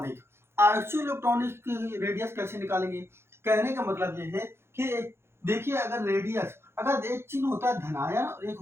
आइसोइलेक्ट्रॉनिक की रेडियस कैसे निकालेंगे, कहने का मतलब ये है कि देखिए अगर रेडियस, अगर एक चिन्ह होता है धनायन और एक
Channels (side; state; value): left; late; 0.12 ms